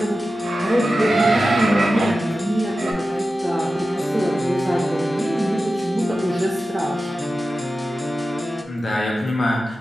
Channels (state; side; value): normal; both; correlation 0.93